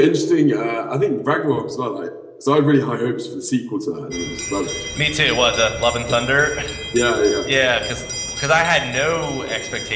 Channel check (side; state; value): both; identical; correlation 1.00